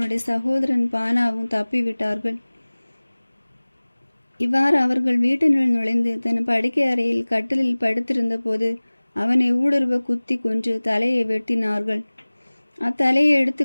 சகோதரன் பானாவும் தப்பிவிட்டார்கள். இவ்வாறு அவர்கள் வீட்டினுள் நுழைந்து தன் படுக்கை அறையில் கட்டிலில் படுத்திருந்த போது அவனை ஊடுருவ குத்தி கொன்று தலையை வெட்டினார்கள். அத்தலையை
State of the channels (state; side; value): inverted; both; correlation -1.00